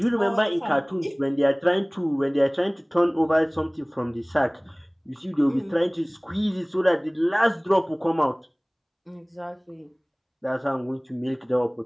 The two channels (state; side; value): identical; both; correlation 1.00